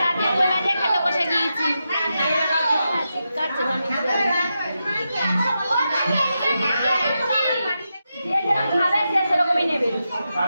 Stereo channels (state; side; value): inverted; both; correlation -0.88